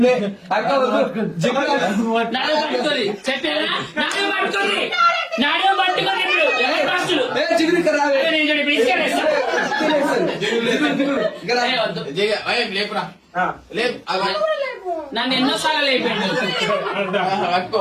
లేపురా లేపు నన్ను ఎన్నోసార్లు లేపిండు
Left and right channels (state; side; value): identical; both; correlation 1.00